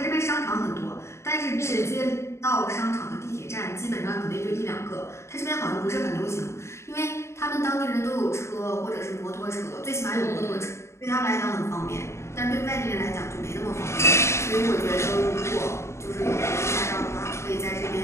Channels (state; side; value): late; right; 0.13 ms